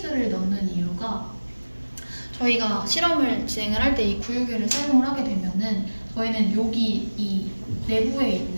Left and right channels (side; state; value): both; inverted; correlation -1.00